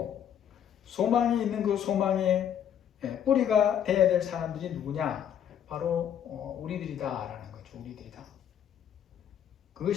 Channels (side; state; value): right; quieter; 9.3 dB